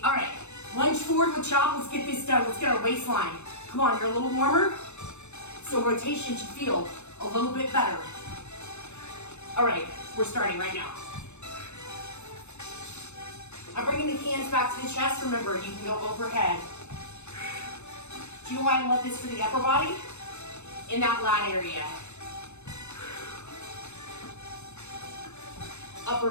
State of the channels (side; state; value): right; late; 0.82 ms